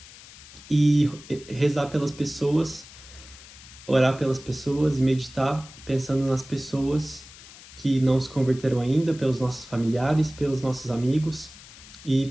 e rezar pelas pessoas, orar pelas pessoas e meditar pensando nas pessoas que não se converteram ainda, pelos nossos familiares, pelos nossos amigos e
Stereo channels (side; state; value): left; noise; hiss, 19 dB below the sound